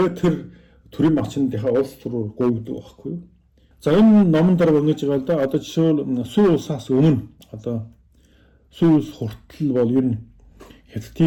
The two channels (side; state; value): both; identical; correlation 1.00